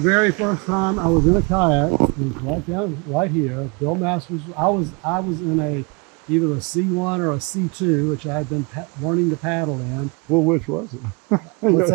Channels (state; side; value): quieter; left; 30.4 dB